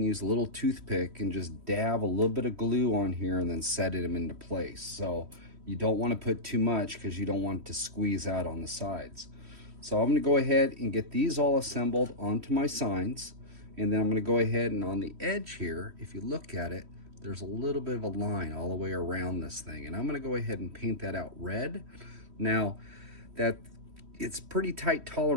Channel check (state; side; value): late; left; 3.1 ms